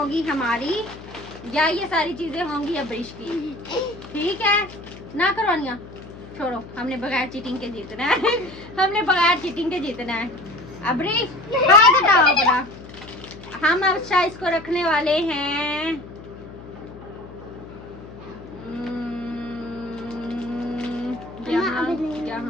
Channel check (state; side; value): noise; left; hum, 16 dB below the sound